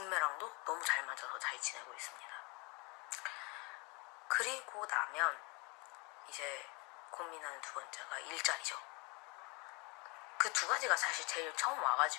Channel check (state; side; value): quieter; right; 28.8 dB